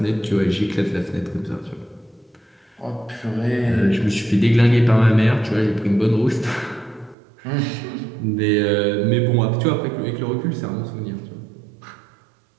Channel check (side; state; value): left; drops out; at 7.2 s